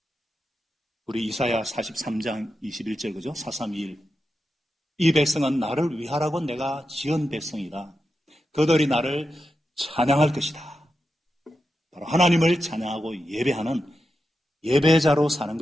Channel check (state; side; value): normal; both; correlation 0.89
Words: 우리 이사야 43장 21절 그죠? 431. 이 백성은 나를 위하라고 내가 지은 백성이다. 그들이 나를 찬양할 것이다. 바로 하나님을 찬양하고 예배하는 예배자로 사는